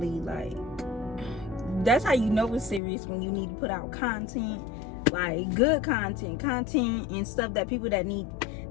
like, that's how you know it's serious, when you need to put out content, like good content and stuff that people that need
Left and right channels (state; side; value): drops out; right; at 2.8 s